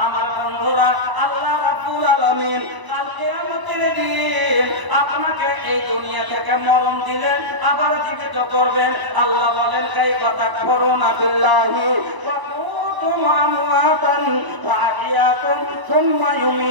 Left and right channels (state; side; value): late; left; 1.0 ms